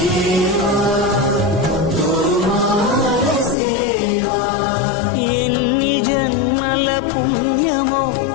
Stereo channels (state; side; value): drops out; right; at 3.6 s